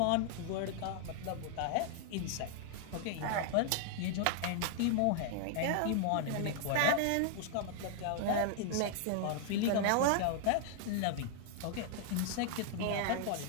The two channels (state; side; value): different; both; correlation 0.00